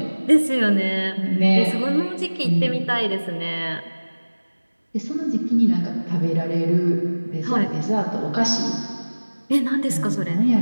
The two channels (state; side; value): inverted; both; correlation -1.00